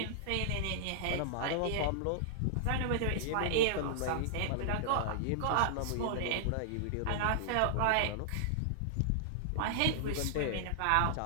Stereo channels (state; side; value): different; both; correlation -0.01